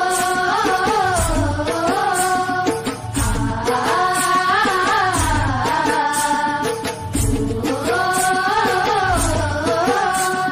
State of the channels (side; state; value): both; identical; correlation 1.00